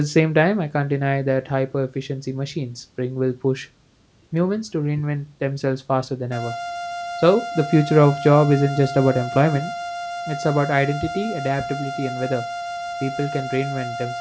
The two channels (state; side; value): identical; both; correlation 1.00